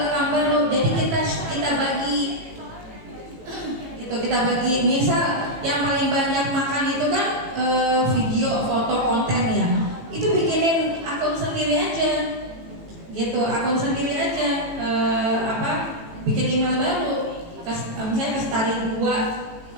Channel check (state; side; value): late; left; 18 ms